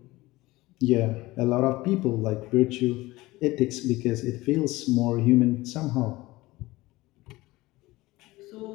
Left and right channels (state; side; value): quieter; right; 19.6 dB